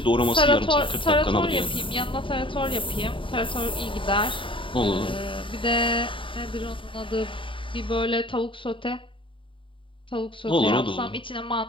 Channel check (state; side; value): late; right; 0.25 ms